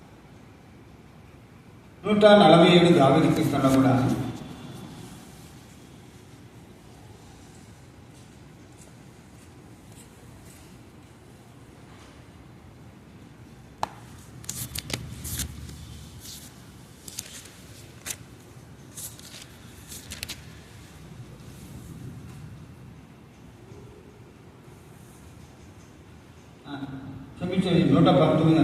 147 దావీదు కీర్తనలో కూడా క్షమించేది 119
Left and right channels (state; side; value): identical; both; correlation 1.00